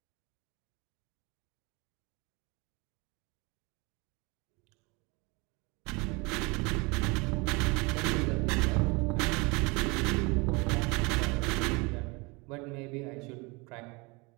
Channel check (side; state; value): left; quieter; 27.4 dB